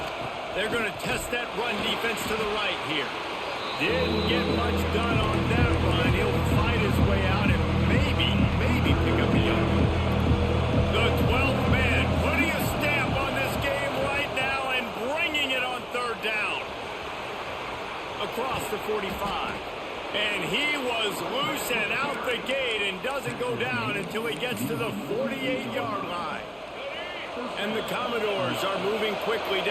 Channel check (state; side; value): identical; both; correlation 1.00